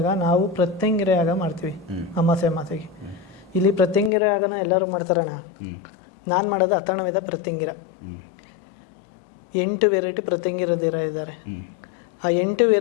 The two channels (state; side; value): drops out; right; at 4.1 s